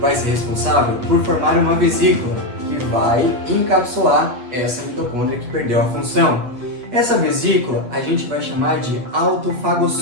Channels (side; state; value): left; late; 8.3 ms